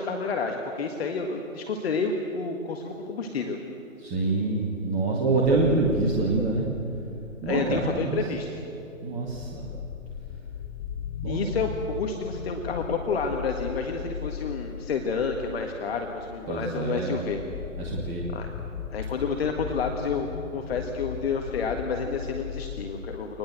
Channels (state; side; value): normal; both; correlation 0.03